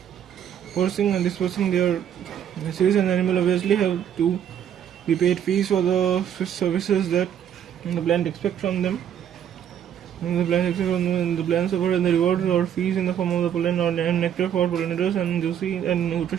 their seeds, and the animal obviously have to be paid fees for the services that the plant expects from them. The plants offer the rewards or fees in the form of the pollen or nectar for pollinators and juicy and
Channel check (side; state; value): left; quieter; 9.4 dB